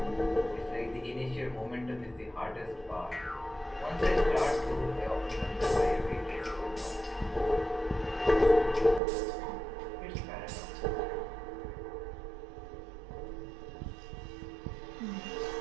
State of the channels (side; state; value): left; drops out; at 9.0 s